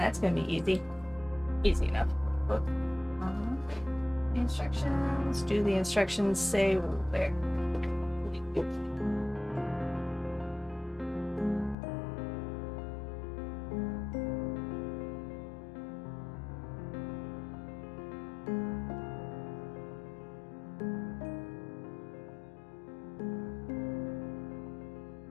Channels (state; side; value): drops out; right; at 11.8 s